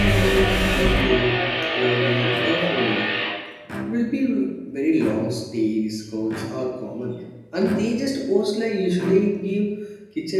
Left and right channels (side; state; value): both; identical; correlation 1.00